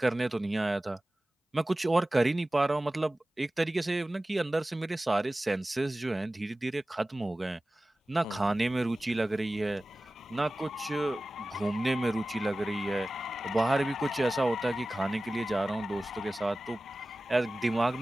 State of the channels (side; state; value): both; normal; correlation 0.96